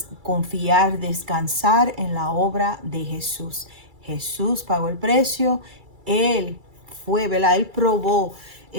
confiar, descansar en la obra de Jesús. Jesús pagó el precio, Él fue, ¿verdad? Él probó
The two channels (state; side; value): late; left; 2.3 ms